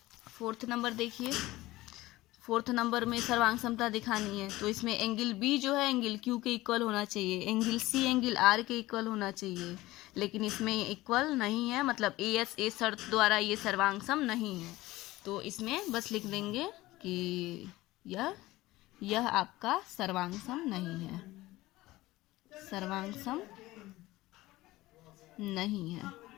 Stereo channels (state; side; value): quieter; right; 18.1 dB